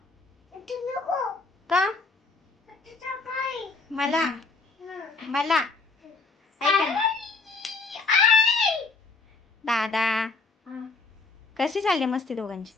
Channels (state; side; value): quieter; right; 4.0 dB